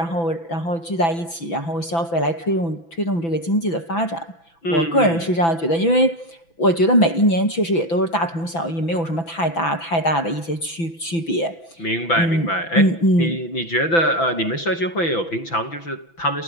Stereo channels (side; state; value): right; late; 6.0 ms